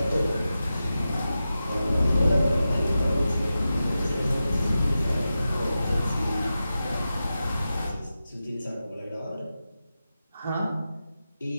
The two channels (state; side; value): inverted; both; correlation -0.92